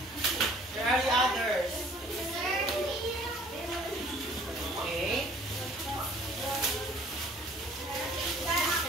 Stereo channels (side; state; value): both; normal; correlation 0.54